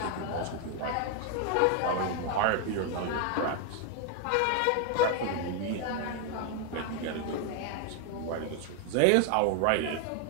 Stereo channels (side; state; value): both; different; correlation 0.01